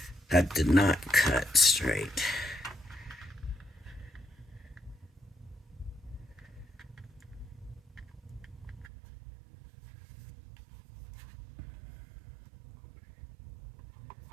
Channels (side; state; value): left; drops out; at 8.9 s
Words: That did not cut straight.